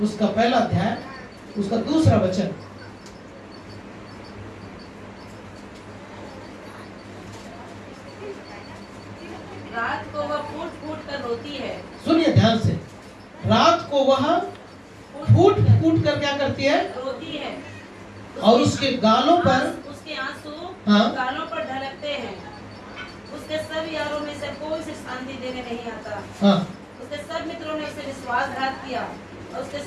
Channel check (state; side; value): identical; both; correlation 1.00